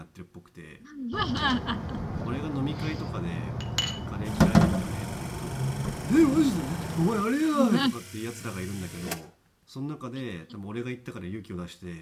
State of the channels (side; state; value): both; identical; correlation 1.00